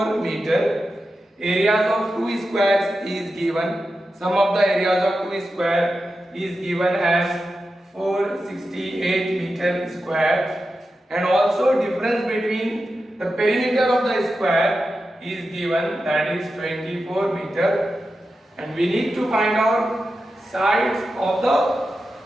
meter. Areas of two squares is given. Sum of the areas of two square is given as 468 meter square, and also difference between the perimeter of the square is given, that is 24 meter, and we need to find out sides of the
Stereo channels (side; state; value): both; normal; correlation 0.91